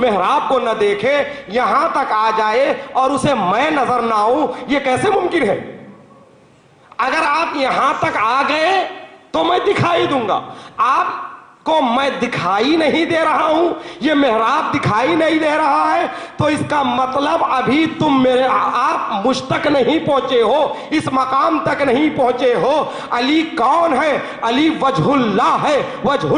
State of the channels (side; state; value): both; identical; correlation 1.00